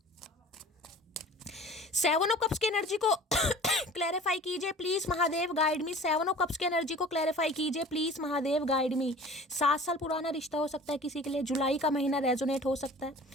7 ऑफ कप्स की एनर्जी को क्लैरिफाई कीजिए please Mahadev, guide me. 7 of cups की एनर्जी को क्लैरिफाई कीजिए प्लीज महादेव, गाइड मी। 7 साल पुराना रिश्ता हो सकता है किसी के लिए, जुलाई का महीना रेजोनेट हो सकता है,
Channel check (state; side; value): normal; both; correlation 0.43